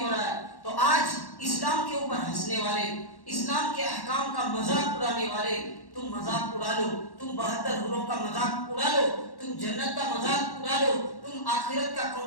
رہا ہے۔ تو آج اسلام کے اوپر ہنسنے والے، اسلام کے احکام کا مذاق اڑانے والے، تم مذاق اڑا لو، تم 72 حوروں کا مذاق اڑا لو، تم جنت کا مذاق اڑا لو، تم آخرت کا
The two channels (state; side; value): late; right; 1.1 ms